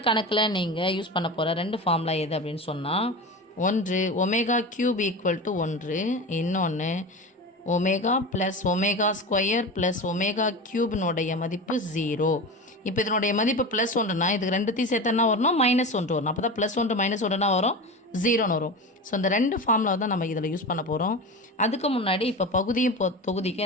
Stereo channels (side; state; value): both; normal; correlation 0.27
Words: கணக்கில் நீங்கள் use பண்ண போகிற ரெண்டு formula எது அப்படின்னு சொன்னால், ஒன்று ஒமேகா கியூப் ஈக்குவல் டு 1, இன்னொன்று omega plus omega square plus omega க்யூப்னுடைய மதிப்பு 0. இப்போ இதனுடைய மதிப்பு +1னா இதுக்கு ரெண்டுத்தையும் சேர்த்து என்ன வரணும், -1 வரணும். அப்போ தான் +1 -1னா வரும், 0ன்னு வரும். ஸோ இந்த ரெண்டு ஃபார்முலா தான் நம்ம இதில் யூஸ் பண்ண போகிறோம். அதுக்கு முன்னாடி இப்போ பகுதியும் தொகுதிக்கும்